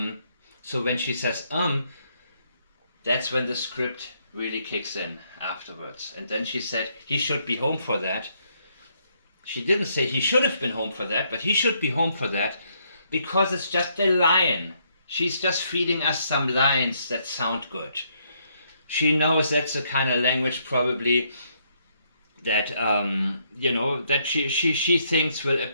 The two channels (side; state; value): both; inverted; correlation -0.73